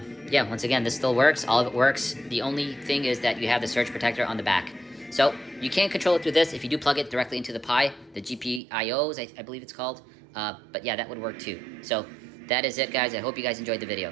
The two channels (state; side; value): drops out; left; at 8.6 s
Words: yeah, once again, this still works. All of it works. The only thing is that you have the surge protector on the back. So you can't control it through this if you do plug it directly into the Pi, the GPIOs, I believe it's called. But yeah, that would work too. So that is it, guys. I hope you guys enjoyed the video.